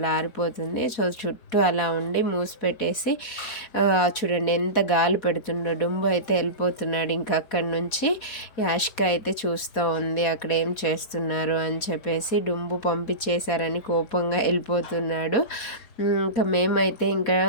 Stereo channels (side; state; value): right; late; 4.2 ms